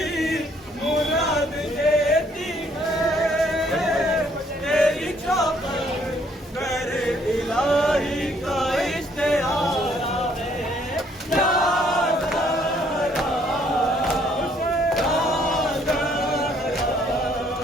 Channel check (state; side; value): normal; both; correlation 0.65